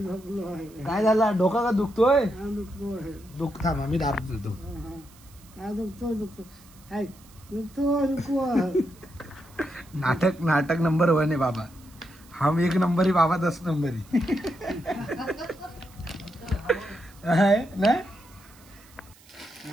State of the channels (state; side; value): noise; right; hiss, 26 dB below the sound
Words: काय झाला? डोका का दुखतोय? दुख थांबा मी दाब देतो. नाटक नाटक नंबर 1 है बाबा. हम 1 नंबर ही, बाबा 10 नंबर ही. है ना?